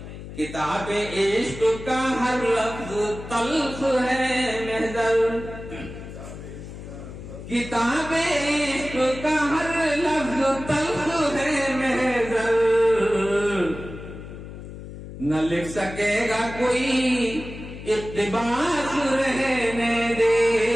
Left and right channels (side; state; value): left; noise; hum, 12 dB below the sound